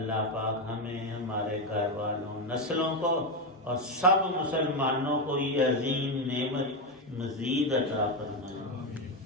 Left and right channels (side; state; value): both; normal; correlation 0.09